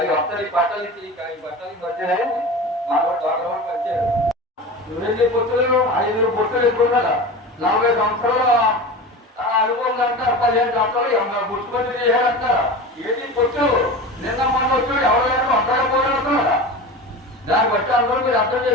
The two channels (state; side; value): normal; both; correlation 0.30